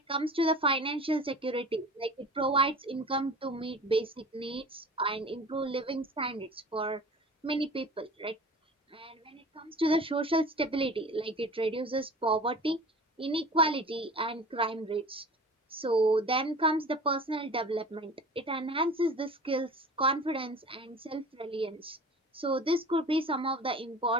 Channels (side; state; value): both; normal; correlation 0.40